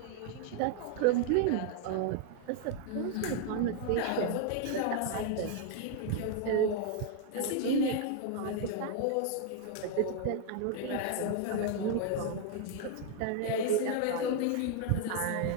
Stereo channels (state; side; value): different; both; correlation 0.00